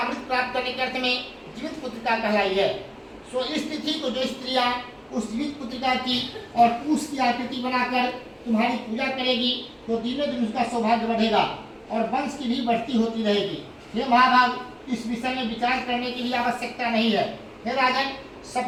करने के अर्थ में जीवित पुत्रिका कहलाई है। सो इस तिथि को जो स्त्रियां उस जीवित पुत्रिका की और उसकी आकृति बनाकर तुम्हारी पूजा करेगी, तो दिनों दिन उसका सौभाग्य बढ़ेगा और वंश की भी बढ़ती होती रहेगी। हे महाभाग, इस विषय में विचार करने की भी आवश्यकता नहीं है। हे राजन,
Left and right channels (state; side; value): identical; both; correlation 1.00